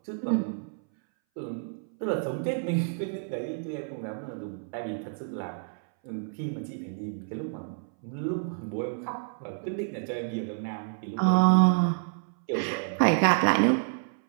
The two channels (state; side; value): silent; left; 58 dB below the other